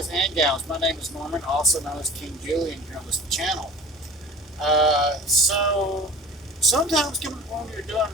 and gals. My name is Norman, also known as King Julian here on this channel. So sometimes when you're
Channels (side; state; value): both; normal; correlation 0.40